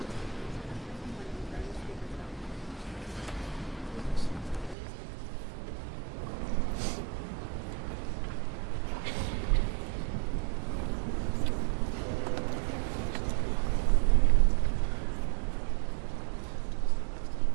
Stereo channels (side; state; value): left; drops out; at 4.8 s